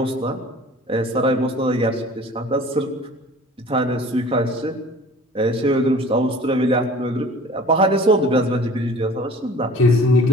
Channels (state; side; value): normal; both; correlation 0.46